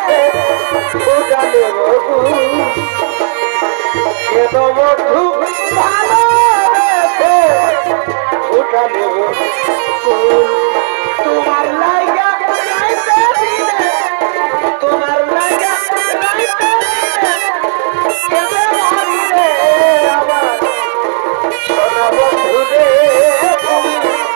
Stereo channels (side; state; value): left; silent; digital silence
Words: ফোটালে কেন বন্ধু ভালোবেসে ফোটালে তোমার লাইগা রাইতে দিনে তোমার লাইগা রাইতে দিনে কেমনে মরি রে আবার সোনা বন্ধু রে তুমি